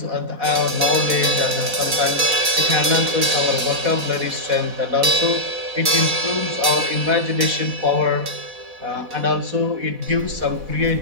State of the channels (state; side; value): late; left; 4.1 ms